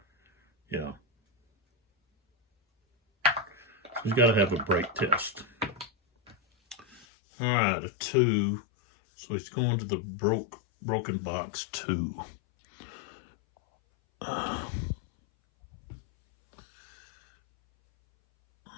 yeah. He's got to have a break test. All right, a 2. So he's going to the broken box 2.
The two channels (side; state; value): right; drops out; at 7.1 s